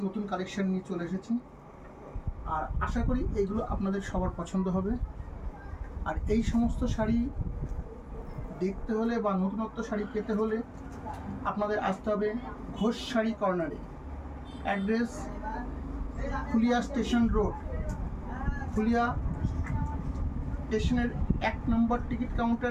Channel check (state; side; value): identical; both; correlation 1.00